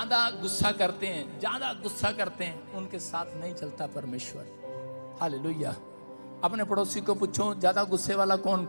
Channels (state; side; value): inverted; both; correlation -1.00